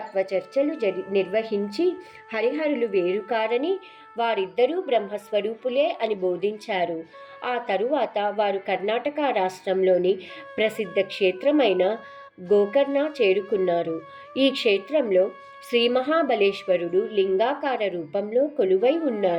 చర్చలు నిర్వహించి హరిహరులు వేరు కారని, వారిద్దరూ బ్రహ్మస్వరూపులే అని బోధించారు. ఆ తరువాత వారు కర్ణాటక రాష్ట్రంలోని ప్రసిద్ధ క్షేత్రమైన గోకర్ణ చేరుకున్నారు. ఈ క్షేత్రంలో శ్రీ మహాబలేశ్వరుడు లింగాకార రూపంలో కొలువై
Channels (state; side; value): identical; both; correlation 1.00